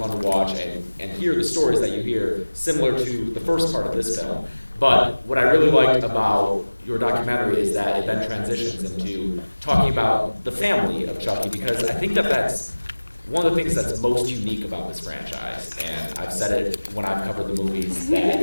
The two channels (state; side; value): inverted; both; correlation -1.00